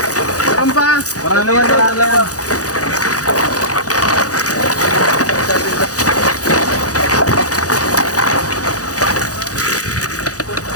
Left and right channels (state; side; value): late; right; 0.67 ms